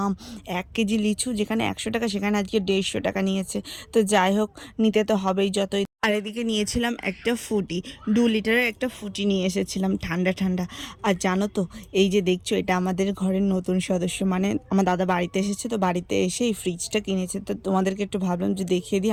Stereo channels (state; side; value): identical; both; correlation 1.00